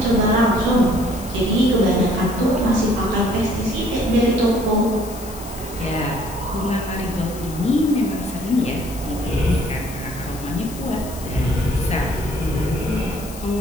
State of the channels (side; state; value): left; noise; hiss, 15 dB below the sound